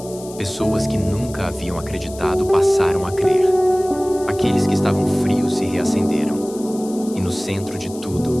Pessoas que nunca haviam acreditado passaram a crer. Aqueles que estavam frios se reacenderam. E no centro de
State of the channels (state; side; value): noise; left; hiss, 18 dB below the sound